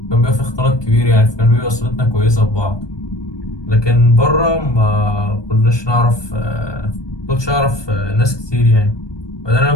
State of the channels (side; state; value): right; late; 1.2 ms